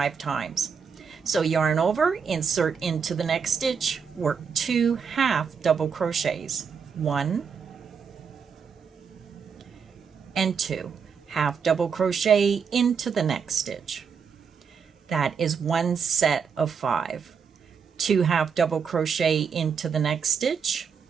times. So yarn over, insert into the next stitch, work 2 half double crochets, 1 and 2, half double crochet into the next stitch. That is 1 set of 5. 2 half double crochet into the next stitch,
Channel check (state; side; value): quieter; left; 6.3 dB